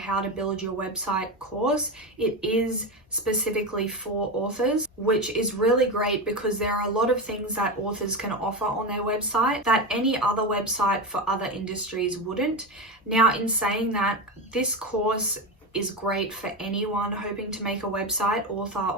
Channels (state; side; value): normal; both; correlation 0.18